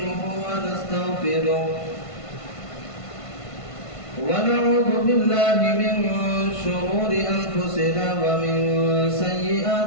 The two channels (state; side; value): late; right; 1.5 ms